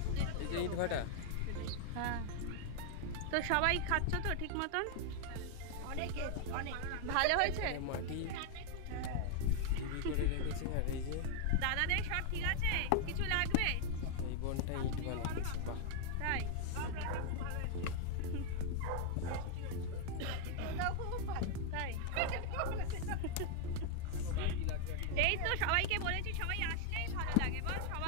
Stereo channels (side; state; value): both; different; correlation 0.00